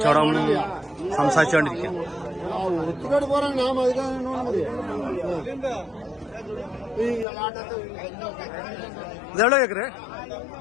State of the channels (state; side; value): drops out; right; at 7.2 s